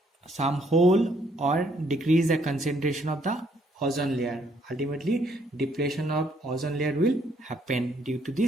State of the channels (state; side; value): normal; both; correlation 0.68